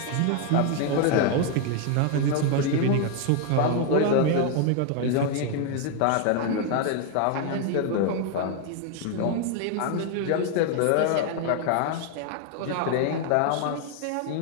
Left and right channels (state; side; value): different; both; correlation 0.01